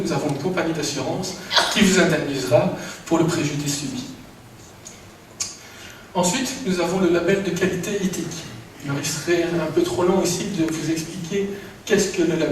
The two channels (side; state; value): both; identical; correlation 1.00